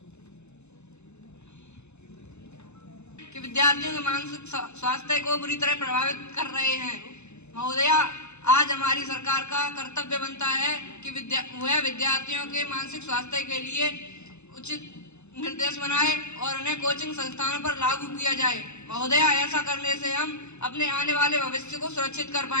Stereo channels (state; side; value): late; right; 0.82 ms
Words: कि विद्यार्थियों के मानसिक स्वास्थ्य को बुरी तरह प्रभावित कर रहे हैं। महोदया, आज हमारी सरकार का कर्तव्य बनता है कि वह विद्यार्थियों के मानसिक स्वास्थ्य के लिए उचित निर्देश बनाए और उन्हें कोचिंग संस्थानों पर लागू किया जाए। महोदया, ऐसा करने से हम अपने आने वाले भविष्य को सुरक्षित कर